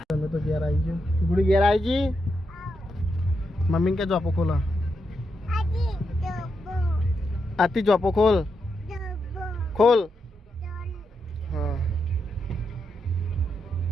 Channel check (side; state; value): both; normal; correlation 0.83